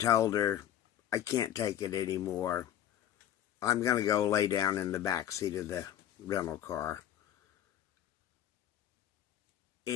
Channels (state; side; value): quieter; right; 11.1 dB